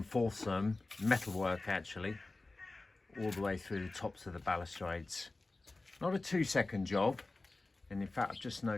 them, metalwork actually, all the way through the tops of the balustrades. Not a 2-second job, and in fact I've just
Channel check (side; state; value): right; quieter; 3.2 dB